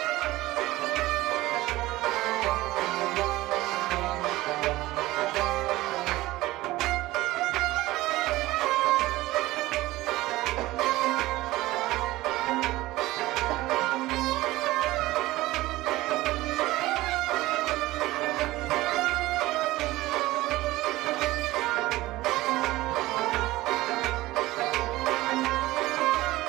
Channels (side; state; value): left; quieter; 18.0 dB